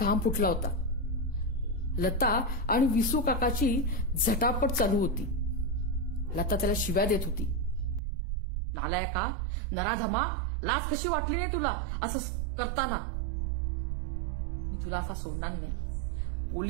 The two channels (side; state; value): left; drops out; at 8.0 s